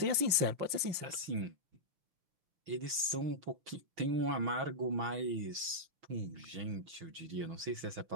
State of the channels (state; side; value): late; left; 6.2 ms